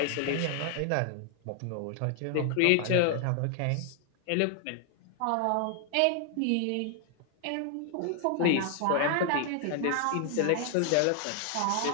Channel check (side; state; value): both; different; correlation 0.00